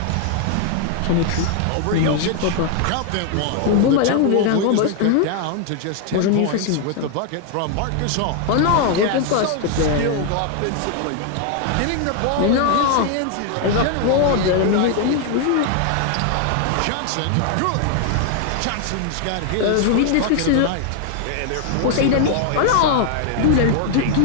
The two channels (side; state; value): both; different; correlation 0.00